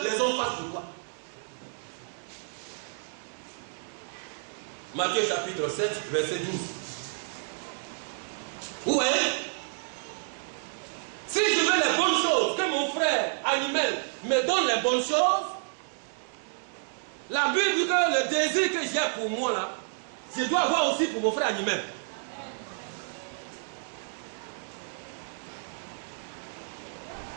les hommes fassent pour toi. Matthieu chapitre 7, verset 12. Vous voyez? Si je veux les bonnes choses, que mon frère animal me donne les bonnes choses, la Bible dit que le désir que j'ai pour moi là, je dois avoir aussi pour mon frère animal.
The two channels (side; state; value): left; silent; digital silence